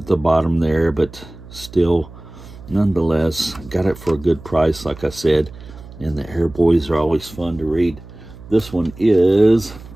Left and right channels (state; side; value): noise; right; hum, 18 dB below the sound